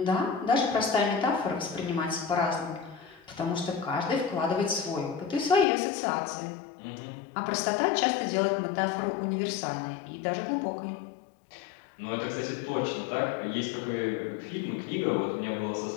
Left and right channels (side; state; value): right; drops out; at 5.7 s